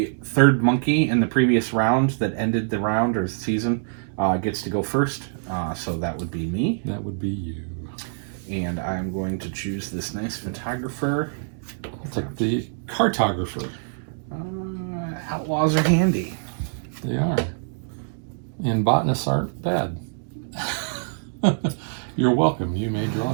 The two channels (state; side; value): silent; left; digital silence